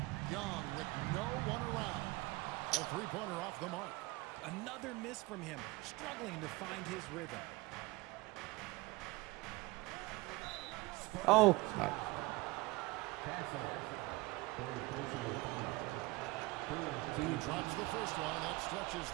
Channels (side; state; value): left; quieter; 22.0 dB